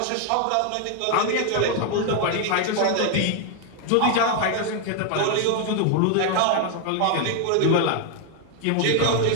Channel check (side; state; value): both; different; correlation 0.00